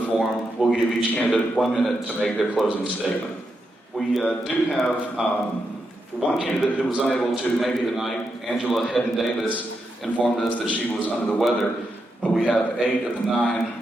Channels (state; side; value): normal; both; correlation 0.84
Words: forum, we'll give each candidate 1 minute to make their closing statement. We do have one candidate who was unable to make it tonight. Angela Hedden-Davis informed us that she was under the weather, but we have 8 of the